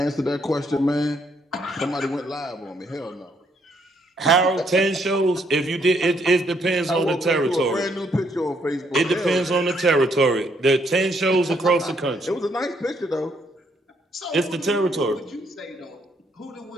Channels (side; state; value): both; normal; correlation 0.71